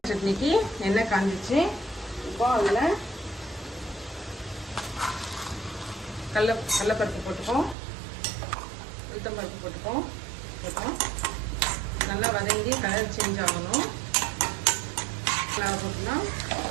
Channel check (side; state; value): left; drops out; at 7.8 s